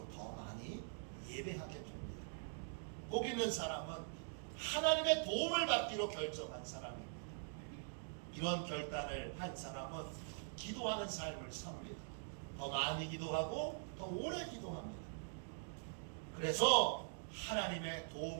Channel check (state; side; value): silent; left; digital silence